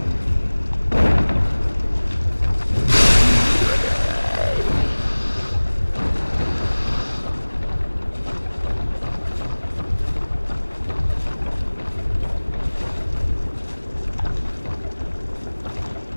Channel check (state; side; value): inverted; both; correlation -1.00